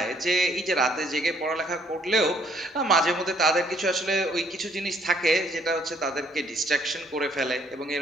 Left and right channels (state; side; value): normal; both; correlation 0.65